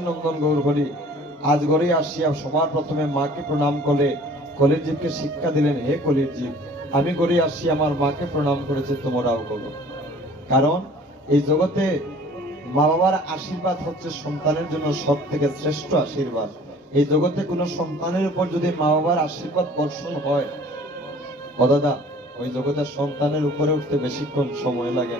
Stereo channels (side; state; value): both; normal; correlation 0.50